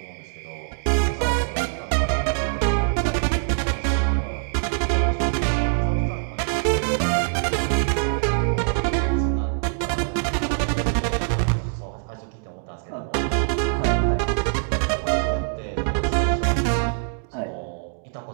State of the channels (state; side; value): silent; left; 63 dB below the other